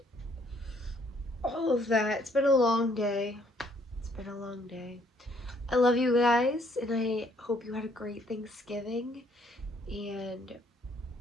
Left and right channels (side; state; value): both; normal; correlation 0.65